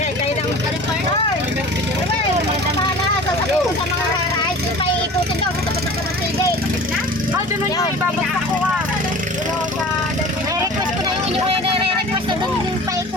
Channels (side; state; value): both; normal; correlation 0.40